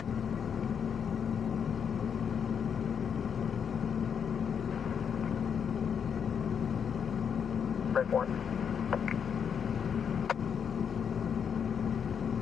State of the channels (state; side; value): quieter; right; 7.3 dB